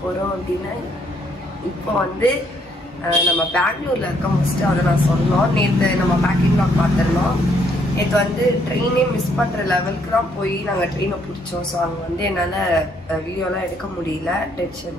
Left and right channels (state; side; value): normal; both; correlation 0.70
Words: போறோம் அப்படினா இப்போ வந்து நம்ம பெங்களூர்ல இருக்க மோஸ்ட் அத நான் சொன்னோம். நேத்து நம்ம பேக்கிங் vlog பார்த்தறோம். இது வந்து ட்ரெயினே மிஸ் பண்ற லெவலுக்கு தான் போய் நாங்க ட்ரெயினை பிடிச்சோம். சோ அங்க வந்து என்னால வீடியோலாம் எடுக்க முடியல